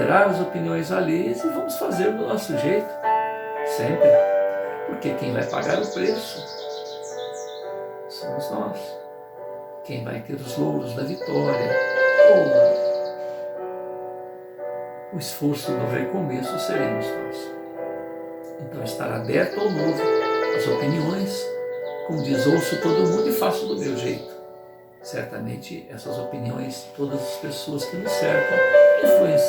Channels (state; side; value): identical; both; correlation 1.00